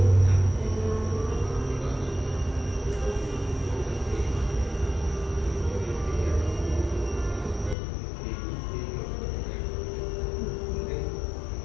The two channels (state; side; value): drops out; right; at 7.8 s